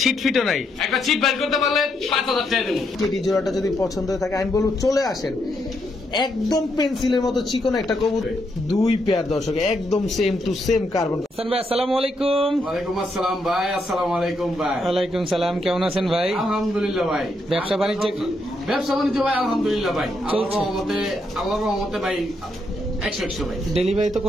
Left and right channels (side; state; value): both; normal; correlation 0.78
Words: ছিট ফিটও নাই। একটা ছিট বাইর করতে পারলে 5000 টাকা দেবো। টেডি জোড়াটা যদি পছন্দ হয়ে থাকে আমি বলবো চলে আসেন। একদম পেন্সিলের মতো চিকন একটা কবুতর, দুই পেয়ার দর্শক, একদম same to same carbon. Hasan ভাই আসসালামু আলাইকুম। ওয়ালাইকুম আসসালাম ভাই। আসসালামু আলাইকুম ভাই। ওয়ালাইকুম সালাম, কেমন আছেন ভাই? আলহামদুলিল্লাহ ভাই। ব্যবসা বাণিজ্য ভাই আলহামদুলিল্লাহ ভাই, আল্লাহর রহমতে ভাই 100 ভাই। ডেলিভারি তো